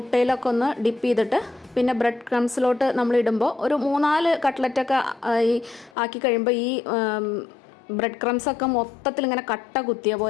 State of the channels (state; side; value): drops out; right; at 5.9 s